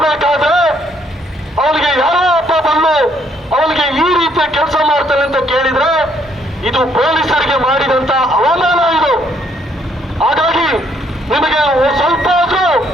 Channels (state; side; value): normal; both; correlation 0.68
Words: ಅವನಿಗೆ ಯಾರೋ ಒಬ್ಬ ಬಂದು ಅವನಿಗೆ ಈ ರೀತಿಯ ಕೆಲಸ ಮಾಡ್ತಾನೆ ಅಂತ ಕೇಳಿದ್ರೆ ಇದು ಪೊಲೀಸರಿಗೆ ಮಾಡಿದಂತ ಅವಮಾನ ಇದು. ಹಾಗಾಗಿ ನಿಮಗೆ ಸ್ವಲ್ಪ ಆದ್ರೂ